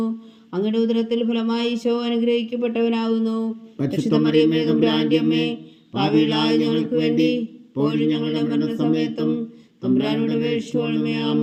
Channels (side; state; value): both; identical; correlation 1.00